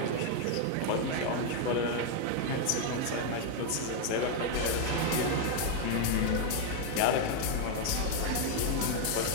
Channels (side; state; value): both; different; correlation 0.00